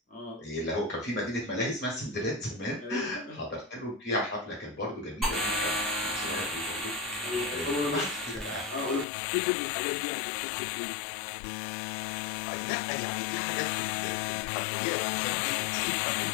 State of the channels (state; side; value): drops out; right; at 9.1 s